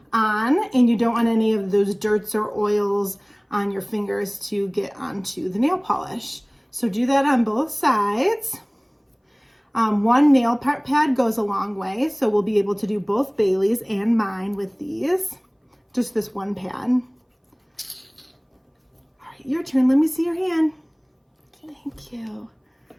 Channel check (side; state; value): both; identical; correlation 1.00